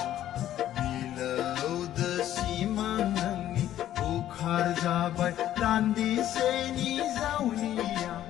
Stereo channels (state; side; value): quieter; right; 12.2 dB